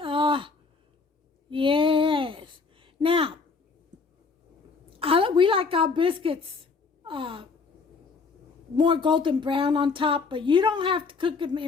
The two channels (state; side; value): quieter; right; 4.6 dB